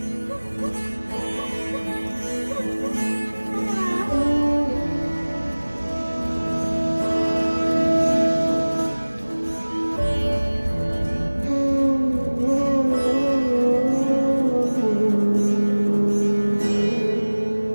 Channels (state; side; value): inverted; both; correlation -1.00